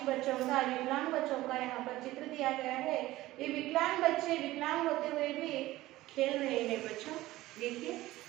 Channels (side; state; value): left; quieter; 17.0 dB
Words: बच्चों का, विकलांग बच्चों का यहाँ पर चित्र दिया गया है। ये विकलांग बच्चे विकलांग होते हुए भी खेल रहे हैं बच्चों। देखिए